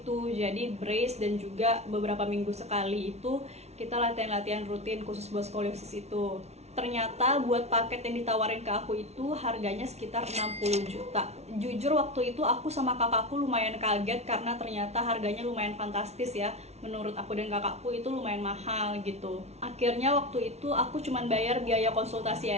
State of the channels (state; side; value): late; left; 0.31 ms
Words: jadi brace dan juga beberapa minggu sekali itu kita latihan-latihan rutin khusus buat skoliosis itu. Ternyata buat paket yang ditawarin ke aku itu harganya sekitar 60 juta. Jujur waktu itu aku sama kakakku lumayan kaget karena ternyata harganya lumayan fantastis ya. Menurut aku dan kakakku itu lumayan mahal gitu. Akhirnya waktu itu aku cuman bayar biaya konsultasi